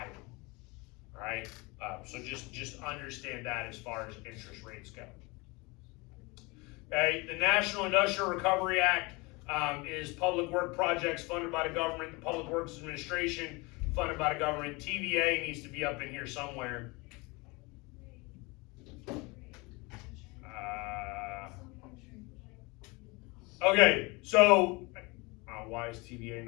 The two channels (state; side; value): quieter; right; 25.9 dB